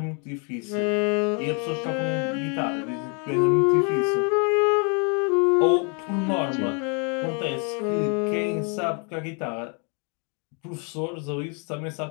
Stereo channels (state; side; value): quieter; right; 37.3 dB